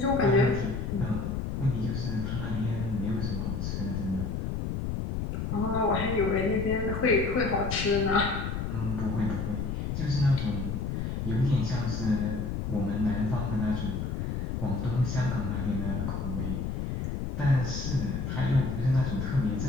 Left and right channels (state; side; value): noise; left; rumble, 2 dB below the sound